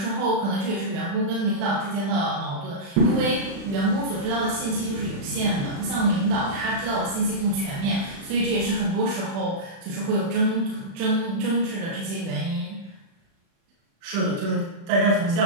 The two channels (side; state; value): left; late; 36 ms